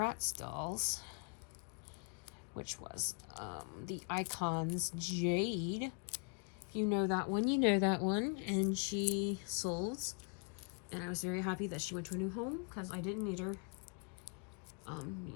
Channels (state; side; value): quieter; right; 39.1 dB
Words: dolls, which was the Icons Jade. If you know that one, you know that one. And she sold, and I was very happy that she went to a new home because I didn't need her.